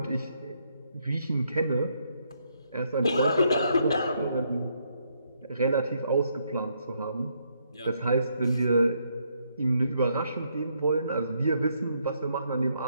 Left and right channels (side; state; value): both; inverted; correlation -0.74